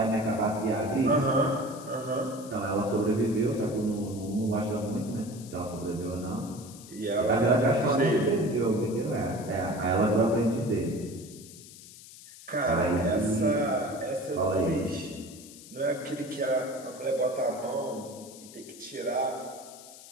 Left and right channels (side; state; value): left; noise; hiss, 18 dB below the sound